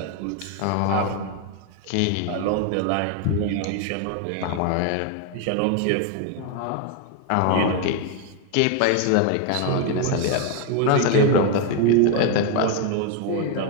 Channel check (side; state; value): both; different; correlation 0.01